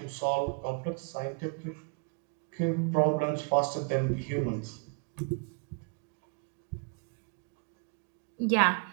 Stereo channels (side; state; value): left; quieter; 36.3 dB